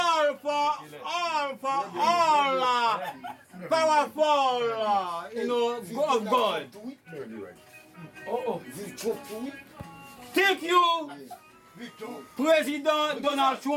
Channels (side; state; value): both; identical; correlation 1.00